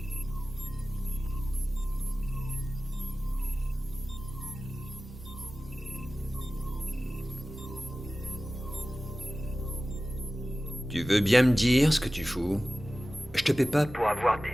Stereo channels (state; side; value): normal; both; correlation 0.96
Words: Tu veux bien me dire ce que tu fous? Je te paie pas Pour avoir